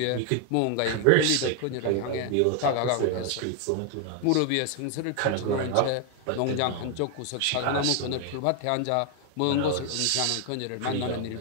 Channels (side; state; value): both; different; correlation 0.00